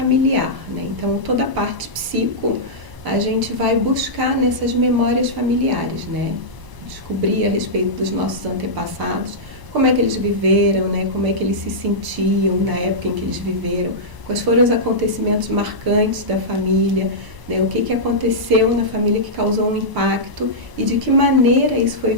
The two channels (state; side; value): late; left; 1.0 ms